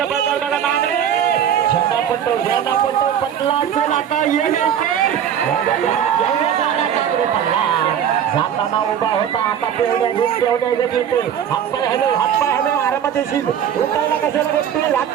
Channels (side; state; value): left; quieter; 9.1 dB